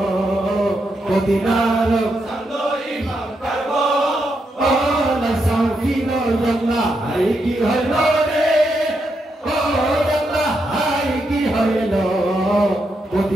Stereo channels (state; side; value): normal; both; correlation 0.82